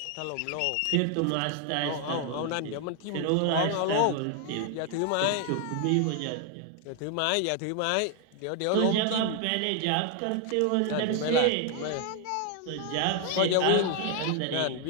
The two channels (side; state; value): both; different; correlation 0.00